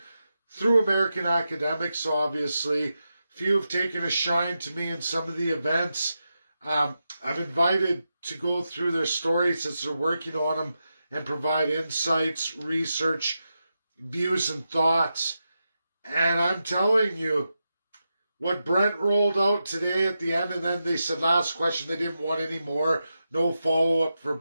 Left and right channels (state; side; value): inverted; both; correlation -0.88